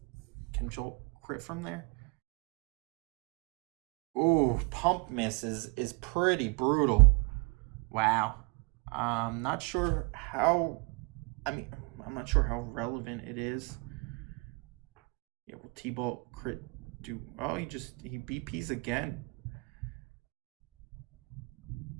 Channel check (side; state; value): left; quieter; 29.2 dB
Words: can Jolt crit from there. Ooh, pump miss is pretty brutal. Wow. I'm not sure how. I'm not sure how relevant it is. Yeah, will T-Bolt crit do? Oh, he BPs again.